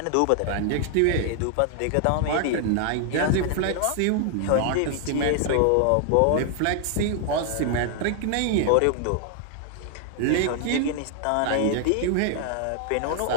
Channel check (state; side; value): different; both; correlation 0.00